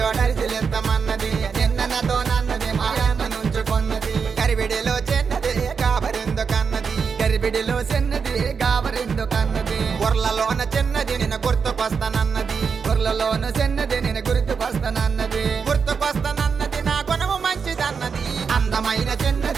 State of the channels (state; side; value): quieter; left; 5.9 dB